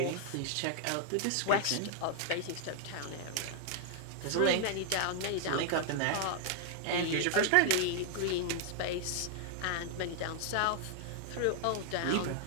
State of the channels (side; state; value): both; different; correlation -0.01